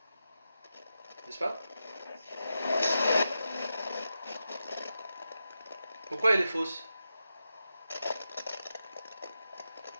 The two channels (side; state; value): both; inverted; correlation -0.89